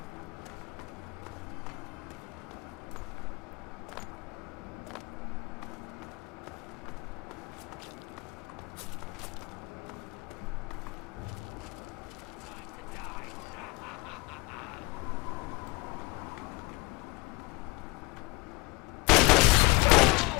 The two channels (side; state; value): right; quieter; 25.3 dB